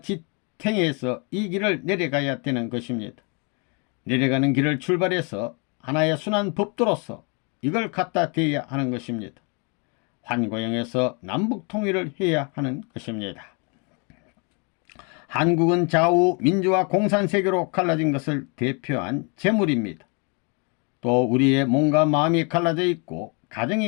지탱해서 이 길을 내려가야 되는 것입니다. 내려가는 길을 출발해서 하나의 순환 법도로서 이걸 갖다 대야 하는 것입니다. 환고형에서 남북 통일을 해야 하는 것입니다. 한국은 좌우 민주화 공산세계로 갈라진 것을 대표한 재물입니다. 또 우리의 몸과 마음이 갈라져 있고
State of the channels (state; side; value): quieter; right; 34.4 dB